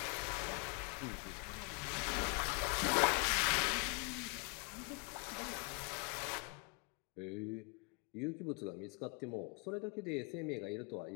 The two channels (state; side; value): quieter; right; 32.7 dB